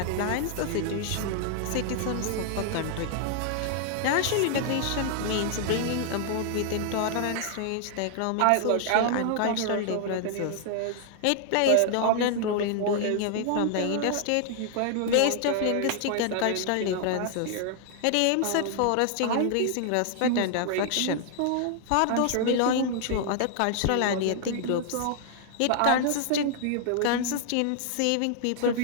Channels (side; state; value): both; different; correlation 0.00